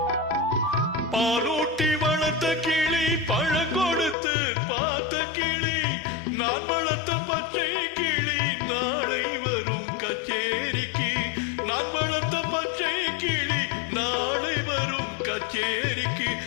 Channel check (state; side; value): drops out; right; at 4.2 s